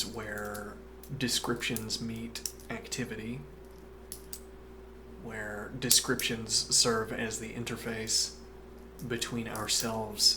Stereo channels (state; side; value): identical; both; correlation 1.00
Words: where descriptions meet activity, where descriptions serve as the interface between